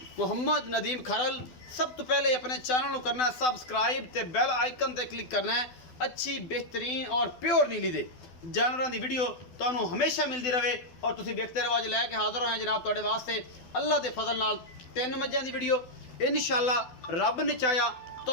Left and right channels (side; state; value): right; late; 12 ms